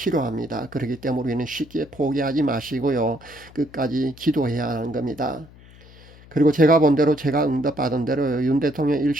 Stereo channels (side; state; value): left; noise; hum, 22 dB below the sound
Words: 그렇기 때문에 우리는 쉽게 포기하지 마시고요, 끝까지 기도해야 하는 겁니다. 그리고 제가 본 대로, 제가 응답받은 대로 윤 대통령